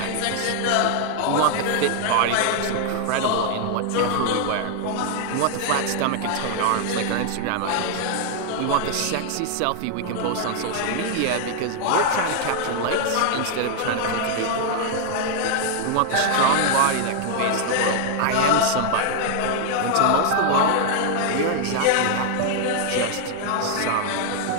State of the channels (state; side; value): different; both; correlation 0.00